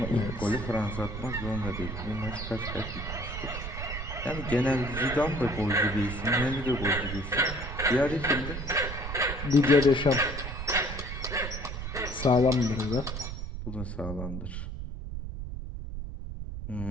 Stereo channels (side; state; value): right; noise; rumble, 7 dB below the sound